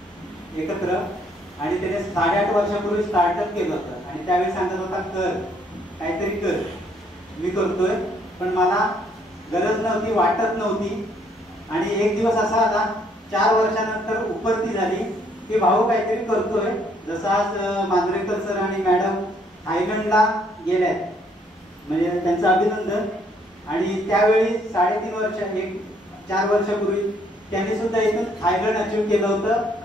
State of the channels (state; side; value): normal; both; correlation 0.67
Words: एकत्र, आणि त्याने 8.5 वर्षापूर्वी स्टार्टअप केलं होतं. आणि त्यावेळी सांगत होता कर, काहीतरी कर. मी करतोय, पण मला गरज नव्हती, वाटत नव्हती. आणि एक दिवस असा आला, 4 वर्षानंतर उपरती झाली की भाऊ काहीतरी करतोय. जसं आज मांजरेकर सर आणि मॅडम थायलंडला गेल्यात, म्हणजे त्यांचं अभिनंदन. आणि त्यावेळी 3.5 वर्ष, 4 वर्षापूर्वी त्यांनी सुद्धा इथून थायलंड अचीव केलं होतं